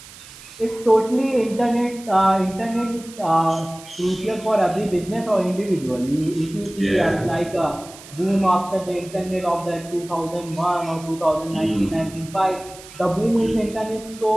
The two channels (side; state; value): right; noise; hiss, 18 dB below the sound